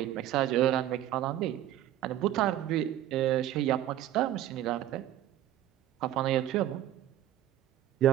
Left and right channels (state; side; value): quieter; left; 12.8 dB